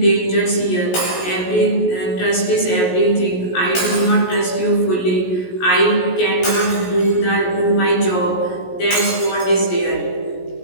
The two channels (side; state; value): right; late; 17 ms